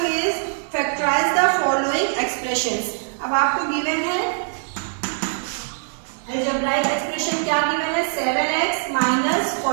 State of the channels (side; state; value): left; silent; digital silence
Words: is factorise the following expressions. अब आपको गिवन है अलजेब्राइक एक्सप्रेशन. क्या गिवन है? 7x minus